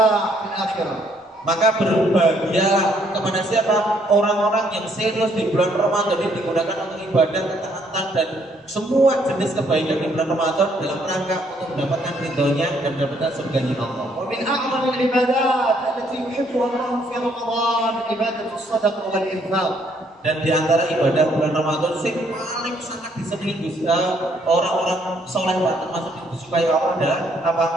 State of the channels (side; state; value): both; normal; correlation 0.68